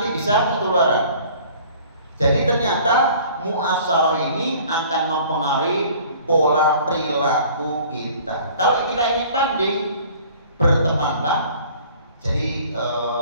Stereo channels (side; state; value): both; inverted; correlation -0.50